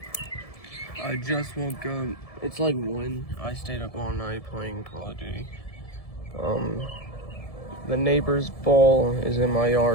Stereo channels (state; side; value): late; right; 1.7 ms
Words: I just woke up. It's like 1. I stayed up all night playing Call of Duty. The neighbor's ball is in my